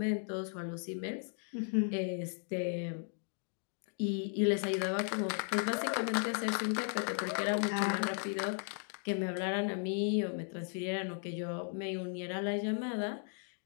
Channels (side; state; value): right; silent; 54 dB below the other